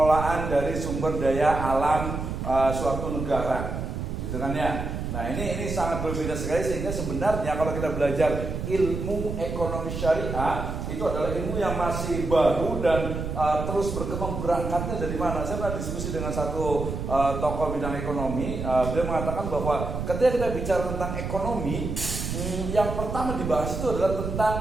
dari sumber daya alam suatu negara, gitu kan ya. Nah ini sangat berbeda sekali sehingga sebenarnya kalau kita belajar ilmu ekonomi syariah itu adalah ilmu yang masih baru dan terus berkembang. Berangkatnya dari mana? Saya pernah diskusi dengan satu tokoh bidang ekonomi. Beliau mengatakan bahwa ketika kita bicara tentang ekonomi, yang pertama dibahas itu adalah tentang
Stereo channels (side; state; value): right; noise; rumble, 4 dB below the sound